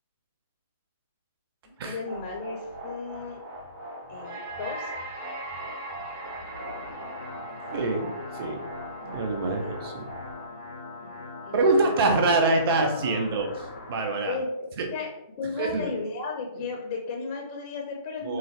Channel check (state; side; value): inverted; both; correlation -0.44